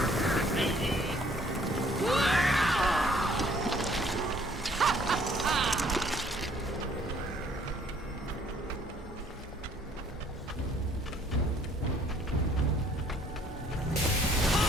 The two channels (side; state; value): both; normal; correlation 0.61